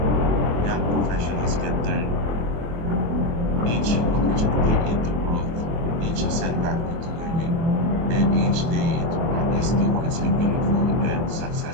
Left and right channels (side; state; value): left; late; 25 ms